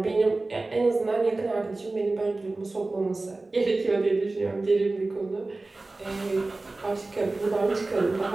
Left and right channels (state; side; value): quieter; left; 3.2 dB